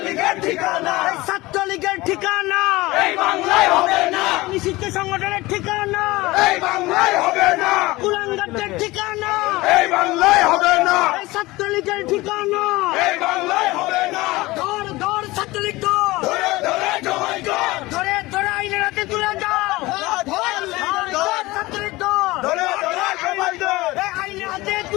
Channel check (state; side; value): quieter; right; 20.3 dB